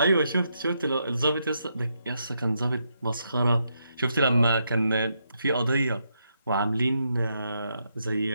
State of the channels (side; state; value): both; inverted; correlation -0.80